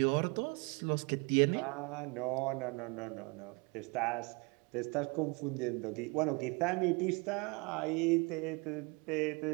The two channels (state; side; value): quieter; left; 29.8 dB